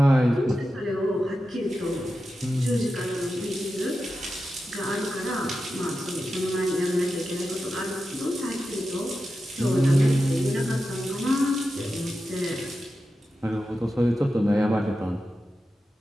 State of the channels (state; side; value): normal; both; correlation 0.91